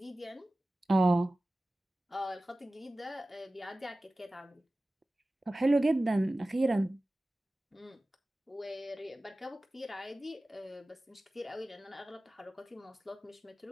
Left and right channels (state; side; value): normal; both; correlation 0.96